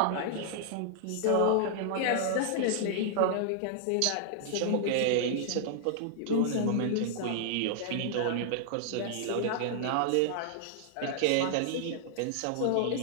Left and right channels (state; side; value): different; both; correlation -0.01